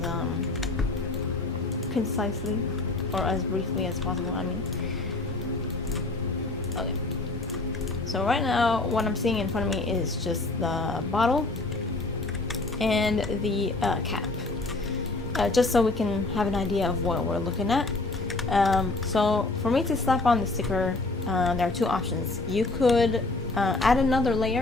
concisely or as briefly as possible. I mean, okay. So right now, what I'm seeing in front of me is just the bottle and the cap, just so we can have an idea of what we're looking at. So for me to slap on the sticker, there are two options. You could add another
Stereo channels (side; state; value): right; quieter; 3.2 dB